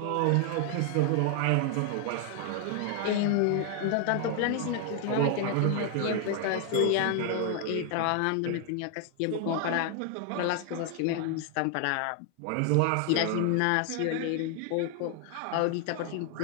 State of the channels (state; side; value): different; both; correlation 0.00